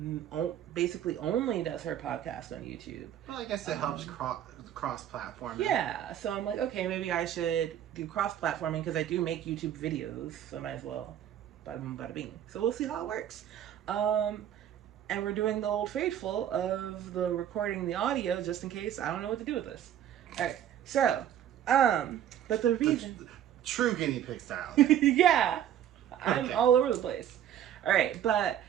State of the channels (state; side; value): quieter; left; 10.6 dB